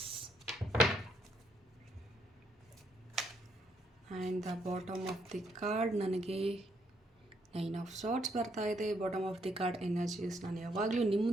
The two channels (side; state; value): both; normal; correlation 0.73